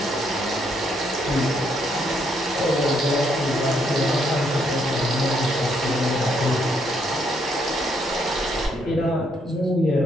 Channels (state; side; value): normal; both; correlation 0.73